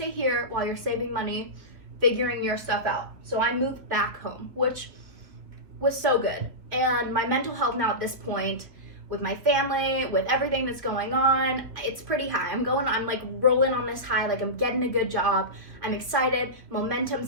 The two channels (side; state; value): left; late; 2.6 ms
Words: here while you're saving money, figuring your stuff out. So I moved back home, which was so good. And my mental health now at this point, with my family, with everything that's going on, it's pretty high. I'm like rolling on this high, like I'm getting a good job. I'm excited,